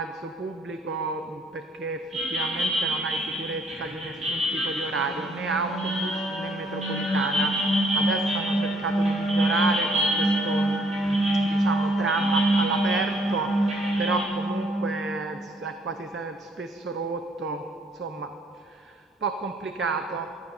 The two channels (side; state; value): both; normal; correlation 0.64